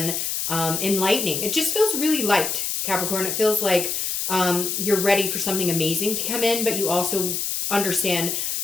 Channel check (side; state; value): left; noise; hiss, 1 dB below the sound